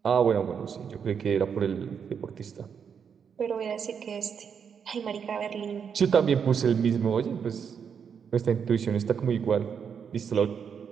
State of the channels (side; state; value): left; quieter; 7.0 dB